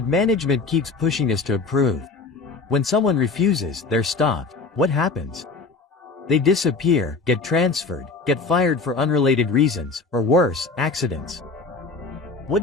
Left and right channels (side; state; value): right; quieter; 4.1 dB